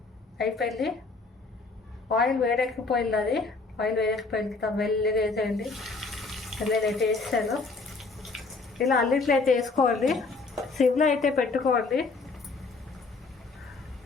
అయిపోయింది. ఆయిల్ వేడెక్కిపోయింది. అది ఆయిల్ వేడెక్కిపోయింది. మెల్లిగా వేసేయండి. నేనైతే వేసాను. ఇలా అన్నిట్లో అయితే వేసుకోండి. సిమ్లో అయితే పెట్టుకోండి.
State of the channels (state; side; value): quieter; right; 3.9 dB